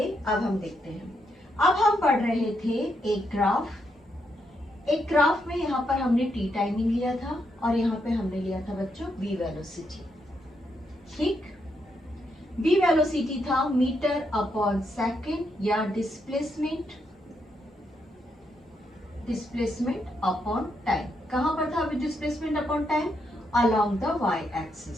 अब हम देखते हैं। अब हम पढ़ रहे थे एक ग्राफ में यहाँ पर हमने टी टाइमिंग लिया था और यहाँ पे हमने लिया था बच्चों वी वेलोसिटी। ठीक, वी वेलोसिटी था मीटर अपॉन सेकेंड या डिस्प्लेसमेंट अपॉन टाइम। कहां पर था displacement upon time? Along the Y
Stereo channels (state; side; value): normal; both; correlation 0.79